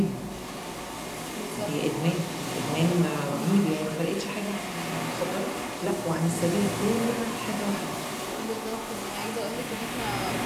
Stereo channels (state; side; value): identical; both; correlation 1.00